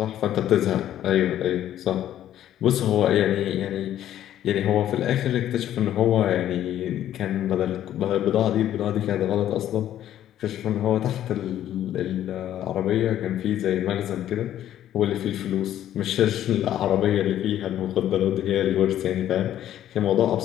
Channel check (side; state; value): right; quieter; 11.7 dB